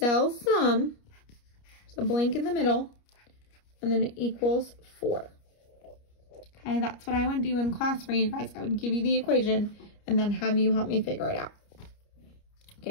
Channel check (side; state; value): right; late; 29 ms